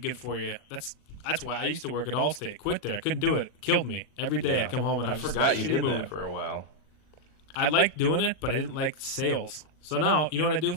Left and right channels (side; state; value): right; late; 40 ms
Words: for you. That's why I used to work at Allstate. Quit there. I couldn't do it. It killed me. Every day Yeah. I'd come home and I was forgot just you in a shitty did mood. that for a while. I liked doing it, but I didn't like sales. So now, you know what I do?